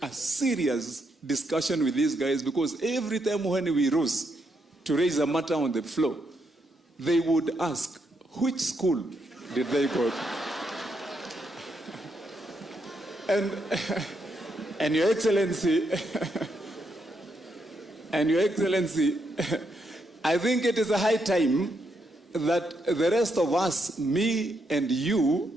a serious discussion with these guys, because every time when we rose to raise a matter on the floor, they would ask, which school did they go to? And Your Excellency, I think it is a high time that the rest of us, me and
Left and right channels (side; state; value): both; normal; correlation 0.79